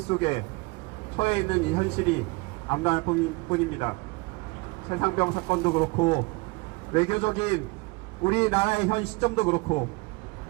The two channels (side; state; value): left; quieter; 26.4 dB